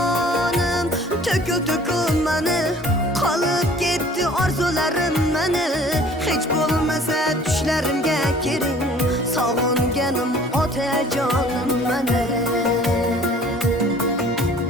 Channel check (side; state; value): both; normal; correlation 0.51